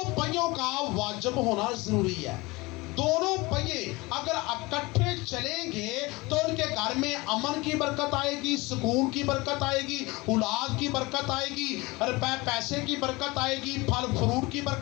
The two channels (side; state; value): right; quieter; 23.2 dB